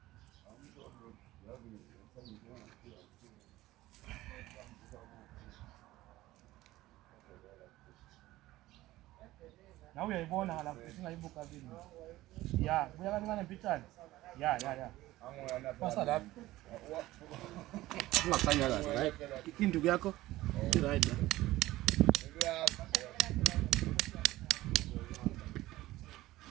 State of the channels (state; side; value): quieter; left; 16.9 dB